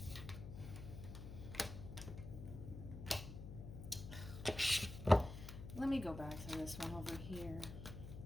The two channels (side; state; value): left; noise; hum, 9 dB below the sound